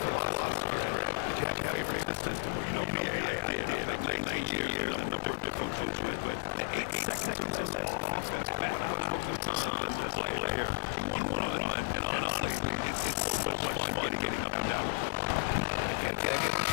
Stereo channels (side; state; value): right; silent; 56 dB below the other